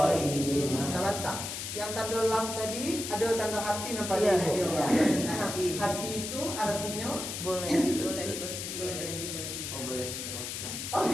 Sebentar. Yang tanda lam tadi ada tanda hati nampak Iya, Ibu? ada. Nah, hati itu artinya Boleh berhenti. Boleh berhenti, boleh tidak. Oh boleh terus. oh,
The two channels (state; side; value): noise; left; hiss, 5 dB below the sound